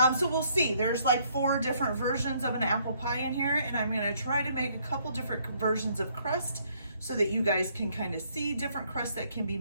So we'll see. There's like 4 different versions of an apple pie in here, and I'm going to try to make a couple different versions of crust so that you guys can kind of see different crusts that can be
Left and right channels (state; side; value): inverted; both; correlation -0.67